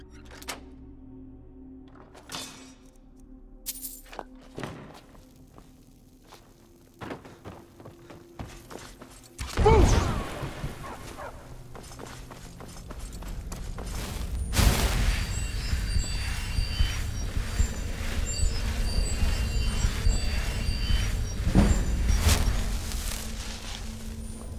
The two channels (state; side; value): identical; both; correlation 1.00